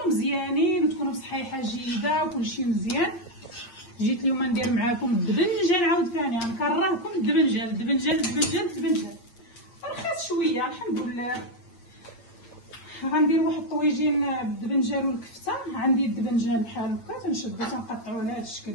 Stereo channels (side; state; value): right; late; 8.6 ms